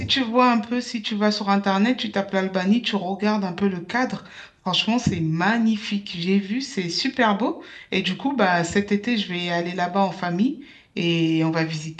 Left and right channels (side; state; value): both; identical; correlation 1.00